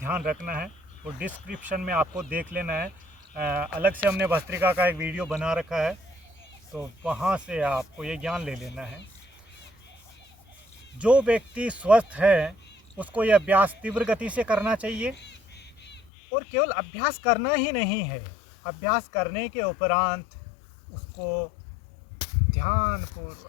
रखना है। तो डिस्क्रिप्शन में आपको देख लेना है। अलग से हमने भस्त्रिका का एक वीडियो बना रखा है, तो वहाँ से आपको ये ज्ञान ले लेना है। जो व्यक्ति स्वस्थ है उसको ये अभ्यास तीव्र गति से करना चाहिए। और केवल अभ्यास करना ही नहीं है, अभ्यास करने के उपरांत उसको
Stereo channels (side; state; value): right; drops out; at 16.1 s